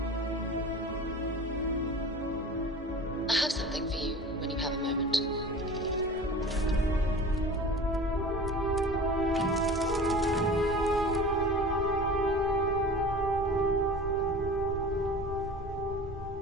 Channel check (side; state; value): both; normal; correlation 0.38